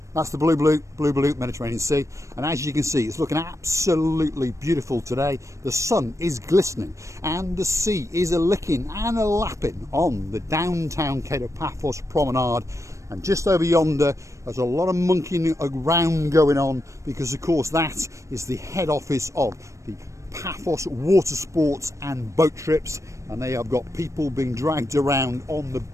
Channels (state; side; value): late; left; 0.15 ms